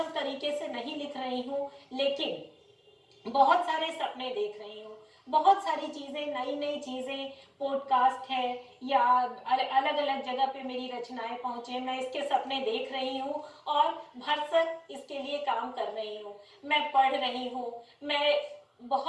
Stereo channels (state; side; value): identical; both; correlation 1.00